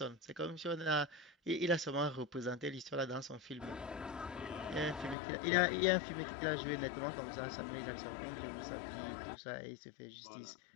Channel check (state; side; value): drops out; right; at 5.2 s